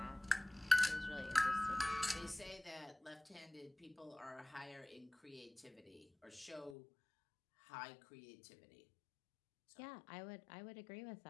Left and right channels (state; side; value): drops out; right; at 6.8 s